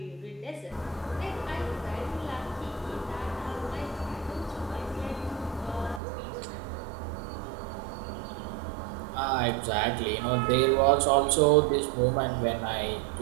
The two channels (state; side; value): drops out; left; at 6.0 s